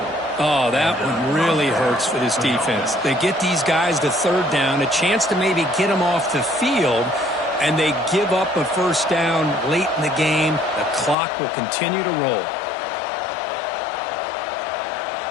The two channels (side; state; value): right; drops out; at 11.2 s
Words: Oh, that one really hurts for this defense. They get these guys to third down, a chance to maybe get them off the field, and they give up a first down late in the game. The clock will continue to roll.